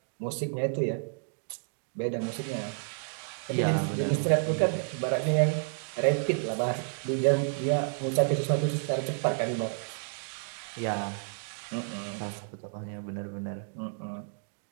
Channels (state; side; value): silent; left; digital silence